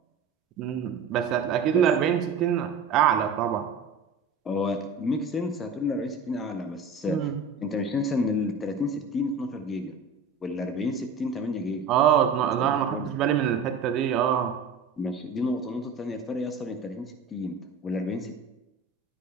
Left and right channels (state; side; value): quieter; left; 4.6 dB